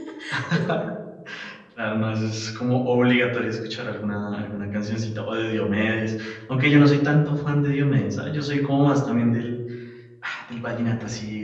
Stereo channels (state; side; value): identical; both; correlation 1.00